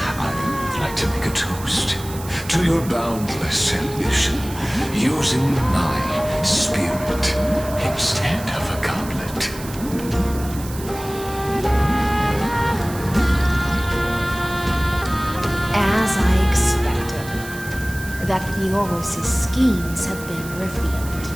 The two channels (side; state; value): right; noise; hiss, 14 dB below the sound